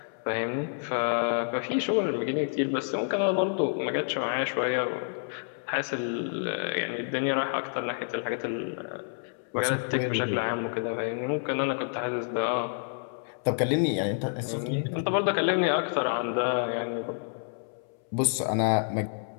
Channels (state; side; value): silent; right; 59 dB below the other